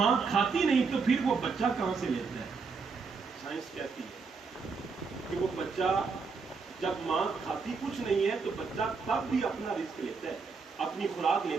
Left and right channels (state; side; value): quieter; left; 4.9 dB